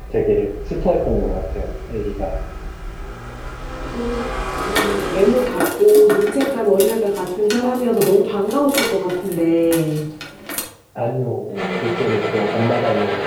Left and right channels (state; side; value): identical; both; correlation 1.00